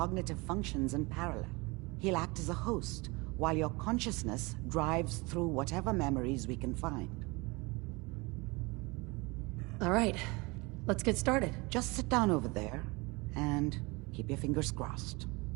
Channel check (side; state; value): left; quieter; 25.9 dB